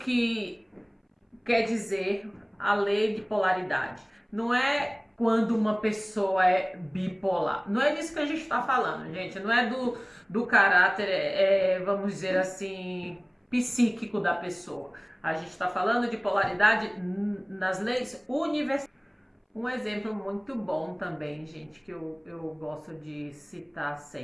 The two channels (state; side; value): identical; both; correlation 1.00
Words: quer dizer a lei de polaridade. Não é quando uma pessoa é bipolar. Não é disso que a gente está falando, gente. Não é do caráter, vamos dizer assim, psíquico da pessoa. A gente está falando de polaridade nas leis universais. Um exemplo muito bom também, gente, que eu gosto de citar